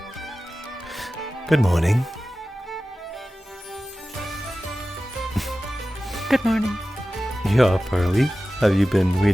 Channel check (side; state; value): both; normal; correlation 0.95